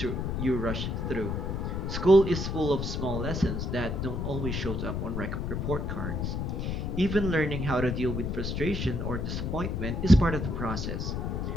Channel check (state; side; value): noise; left; rumble, 2 dB below the sound